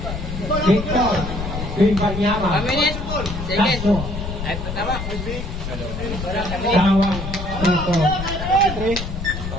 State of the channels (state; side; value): noise; left; rumble, 6 dB below the sound